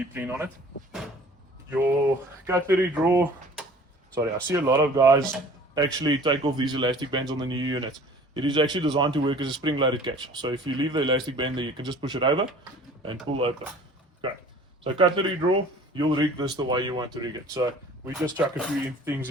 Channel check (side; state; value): both; normal; correlation 0.48